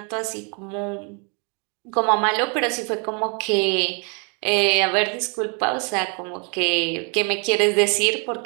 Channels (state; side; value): quieter; left; 36.9 dB